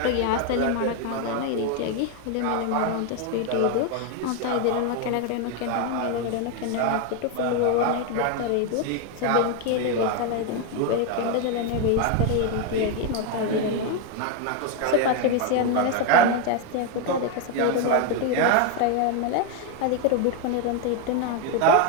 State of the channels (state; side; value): different; both; correlation 0.01